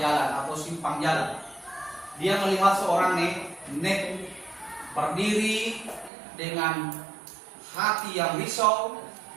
atau simpang jalan, dia melihat seorang nenek berdiri dengan hati yang risau,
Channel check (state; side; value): drops out; left; at 6.1 s